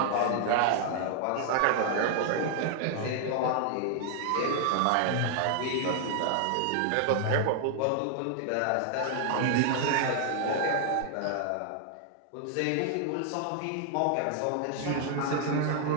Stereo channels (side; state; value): both; different; correlation 0.00